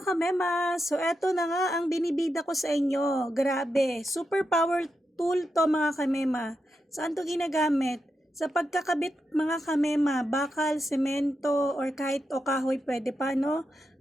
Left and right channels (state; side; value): normal; both; correlation 0.86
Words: kamema! So eto na nga ang binibida ko sa inyo. Grabe, super power tool to mga kamema. Saan to ginagamit? Sa pagkakabit mga kamema, bakal, semento, or kahit o kahoy pwede pa, no?